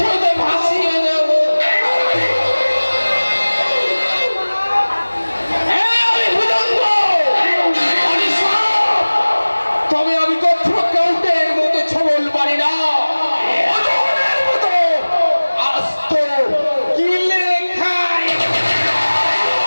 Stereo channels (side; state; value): both; inverted; correlation -1.00